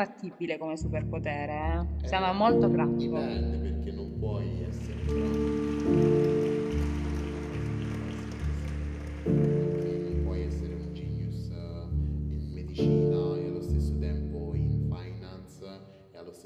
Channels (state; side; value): identical; both; correlation 1.00